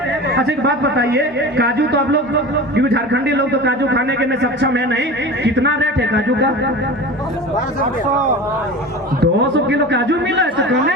अच्छा एक बात बताइए, काजू तो आप लोग, क्योंकि झारखंडी लोग तो काजू खाने के में सक्षम है नहीं, कितना रेट है काजू का? 200 किलो काजू मिला है तो कौन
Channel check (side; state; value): both; normal; correlation 0.33